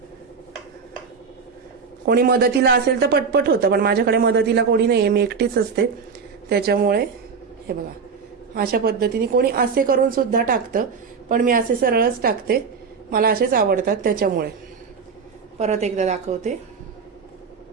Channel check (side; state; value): left; quieter; 5.6 dB